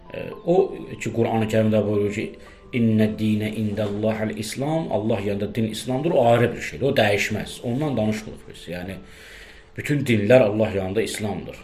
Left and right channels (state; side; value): identical; both; correlation 1.00